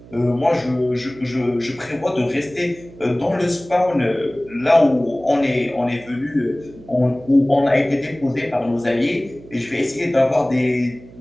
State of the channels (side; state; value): right; noise; hum, 20 dB below the sound